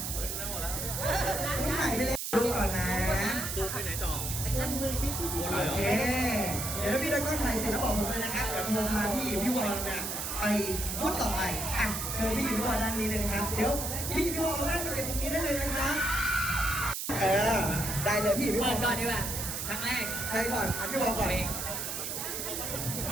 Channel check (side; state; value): right; noise; hiss, 4 dB below the sound